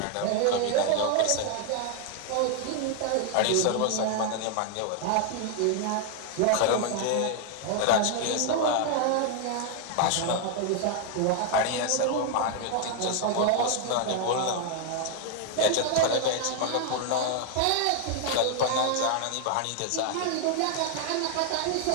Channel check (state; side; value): different; both; correlation 0.00